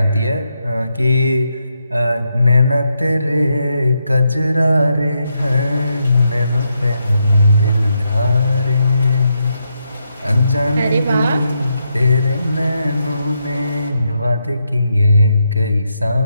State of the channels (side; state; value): both; inverted; correlation -0.82